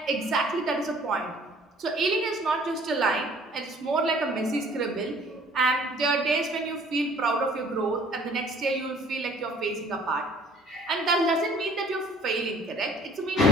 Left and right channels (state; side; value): normal; both; correlation 0.55